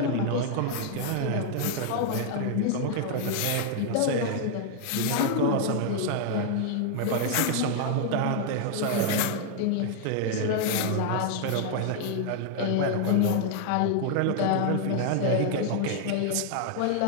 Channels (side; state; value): both; different; correlation 0.00